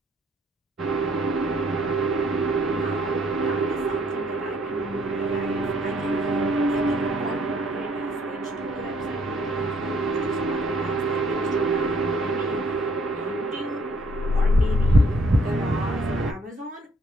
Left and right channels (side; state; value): both; normal; correlation 0.65